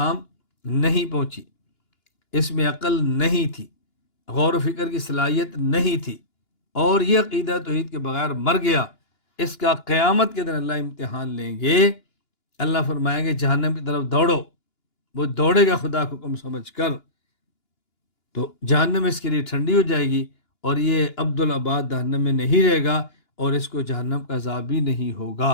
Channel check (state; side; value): late; right; 2.9 ms